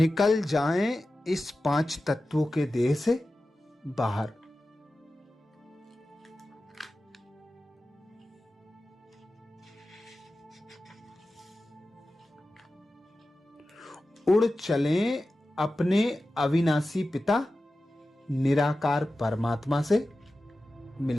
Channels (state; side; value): normal; both; correlation 0.94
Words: जाएं इस पांच तत्वों के देह से बाहर। उड़ चलें अपने अविनाशी पिता निराकार परमात्मा से